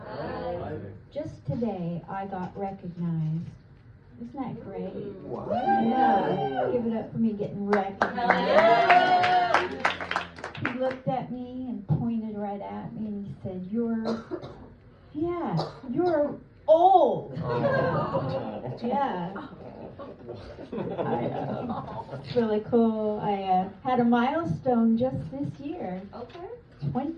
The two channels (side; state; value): both; identical; correlation 1.00